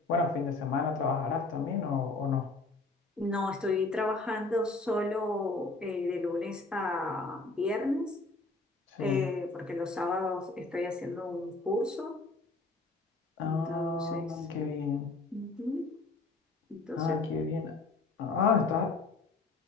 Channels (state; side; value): quieter; right; 3.5 dB